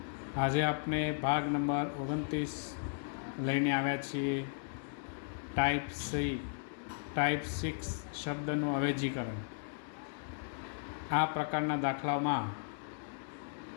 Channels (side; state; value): right; silent; digital silence